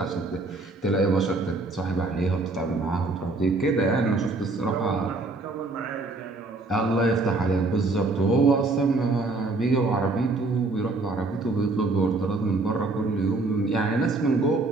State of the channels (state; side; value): quieter; left; 3.3 dB